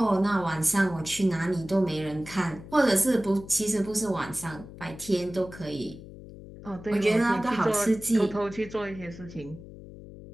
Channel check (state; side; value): noise; left; hum, 15 dB below the sound